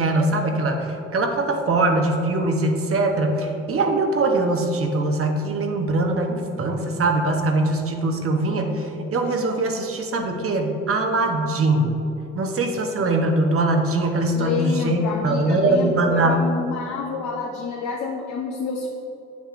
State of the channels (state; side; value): normal; both; correlation 0.33